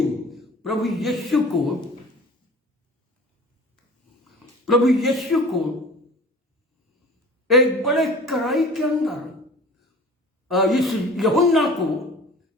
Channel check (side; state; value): both; normal; correlation 0.42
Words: प्रभु यीशु को एक बड़े कढ़ाई के अंदर, इस यूहन्ना को